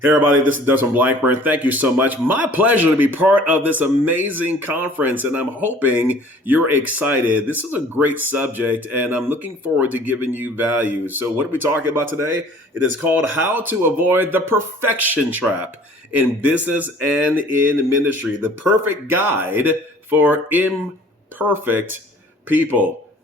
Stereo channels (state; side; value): normal; both; correlation 0.51